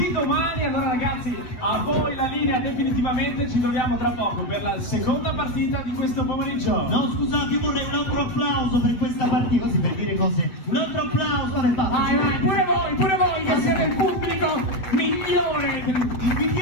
domani. Allora ragazzi, a voi la linea definitivamente, ci troviamo tra poco per la seconda partita di questo pomeriggio. No, scusate, io vorrei un altro applauso per questa partita, così per dire cose. Un altro applauso, vabbè, Vai, vai, pure voi che siete il pubblico migliore.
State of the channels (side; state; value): right; late; 8.1 ms